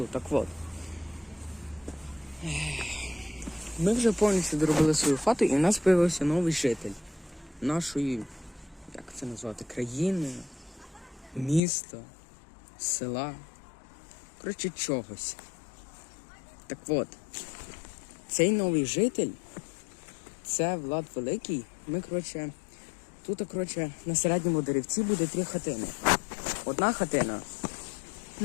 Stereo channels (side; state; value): right; drops out; at 11.6 s